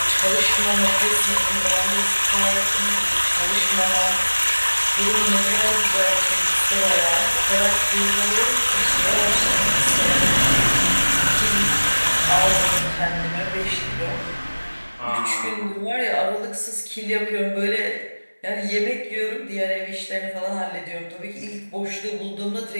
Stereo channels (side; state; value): both; inverted; correlation -1.00